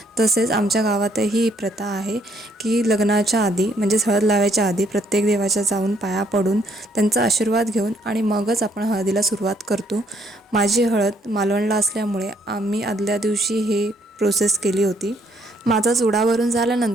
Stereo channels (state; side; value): normal; both; correlation 0.68